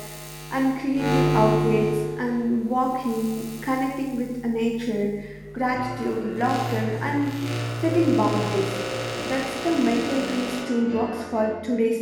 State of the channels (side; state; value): both; identical; correlation 1.00